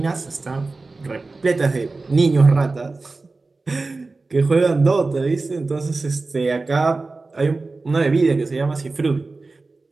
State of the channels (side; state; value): left; quieter; 3.6 dB